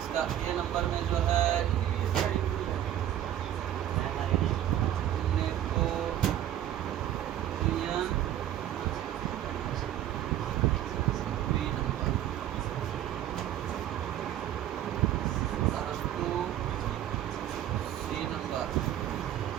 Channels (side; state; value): left; quieter; 11.8 dB